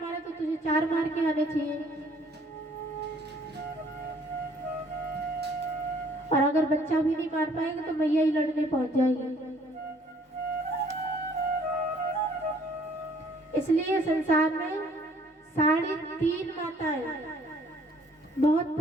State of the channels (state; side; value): normal; both; correlation 0.59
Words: तो तुझे 4 मार के आने चाहिए। और अगर बच्चा भी नहीं मार पाएगा तो मैया ही लड़ने पहुंच जाएगी। इसलिए संसार में 3.5 माताएं बहुत